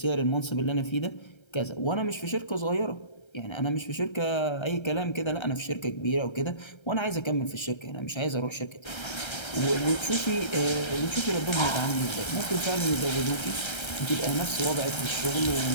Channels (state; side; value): late; right; 1.3 ms